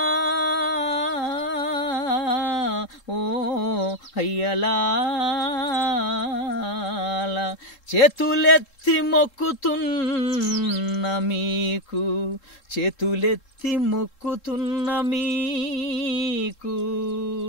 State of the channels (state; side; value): late; right; 3.7 ms